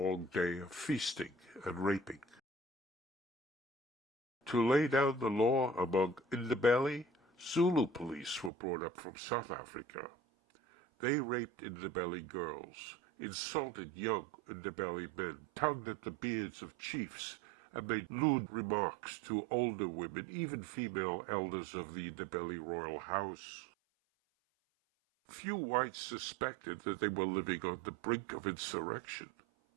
day of feasting and raping." To lay down the law among Ndebele, Zulu police were brought up from South Africa. They raped Ndebele girls, insulted young Ndebele men, tugged at the beards of chiefs, and made lewd remarks to older women, even female elders of the Ndebele royal house. Few whites suspected that they were living on the brink of insurrection.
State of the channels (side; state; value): left; drops out; at 8.5 s